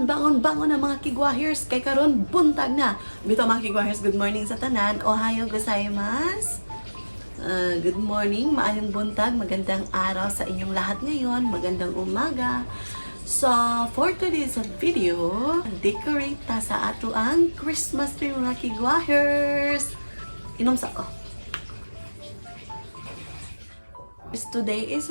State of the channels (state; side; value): inverted; both; correlation -1.00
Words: na mga kigwahers. Kay karon buntag na. Bito mga kigwahers, good morning sa tanan. Ohayo gozaimasu. Good morning, maayong buntag, magandang araw sa inyong lahat ngayon, magandang umaga. So, for today's video, decorate ta sa ato ang Christmas tree mga kigwahers. Inom sa ko. Today is